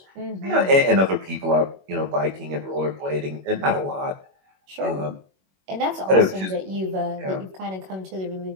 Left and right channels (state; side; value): late; left; 21 ms